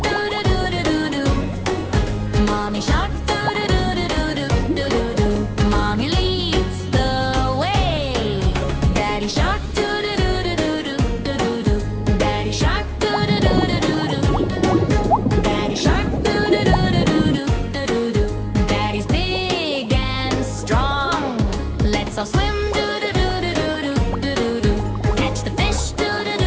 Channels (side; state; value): both; identical; correlation 1.00